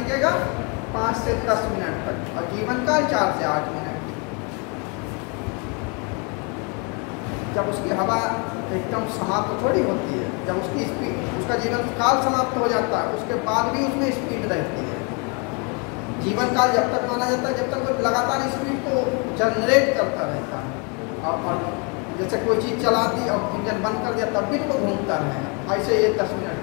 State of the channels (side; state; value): right; quieter; 33.7 dB